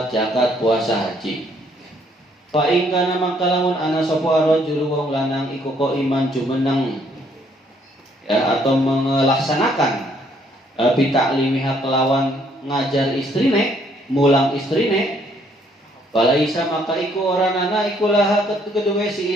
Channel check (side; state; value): both; normal; correlation 0.67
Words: zakat, puasa, haji. Fa in kana makalamun ana sapa rajul wong lanang iku kok iman jumeneng ya, atau melaksanakan bitaklimiha kelawan ngajar istrine, mulang istrine. Walaisa maka iku ora nana iku laha kedua si